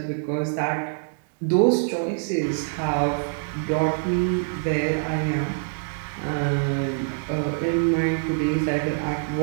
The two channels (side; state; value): left; silent; 62 dB below the other